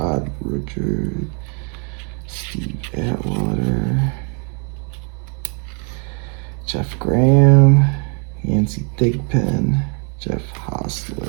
Richard, Steve Atwater, Jeff Graham, Yancey Thigpen, Jeff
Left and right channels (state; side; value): quieter; left; 37.9 dB